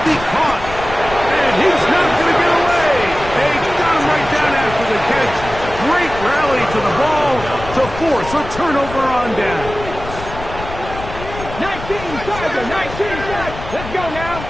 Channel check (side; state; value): left; noise; rumble, 11 dB below the sound